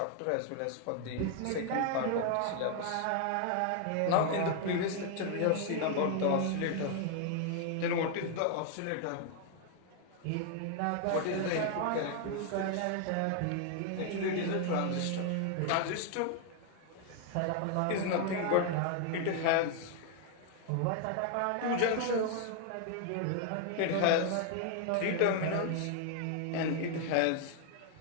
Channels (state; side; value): different; both; correlation 0.00